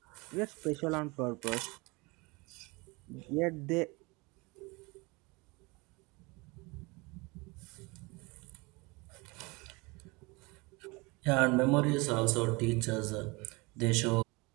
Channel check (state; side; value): quieter; left; 26.1 dB